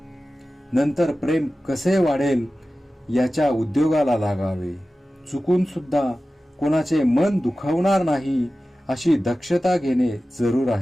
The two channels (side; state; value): both; normal; correlation 0.95